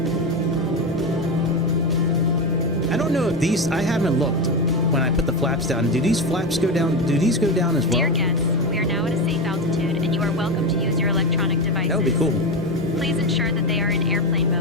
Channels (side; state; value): both; normal; correlation 0.16